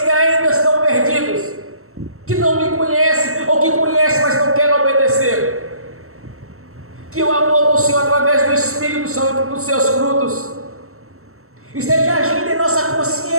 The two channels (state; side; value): late; left; 0.63 ms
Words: que ainda estão perdidos, que não me conhecem, ou que conhecem, mas não querem obedecer. Que o amor do Senhor, através do Espírito Santo e dos Seus frutos, esteja agindo em nossa